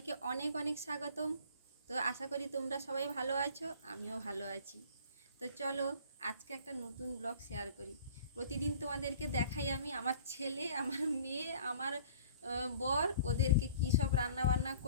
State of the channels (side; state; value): both; inverted; correlation -0.49